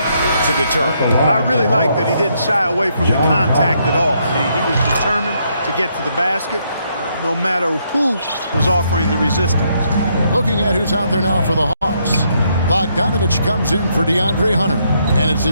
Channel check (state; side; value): inverted; both; correlation -0.74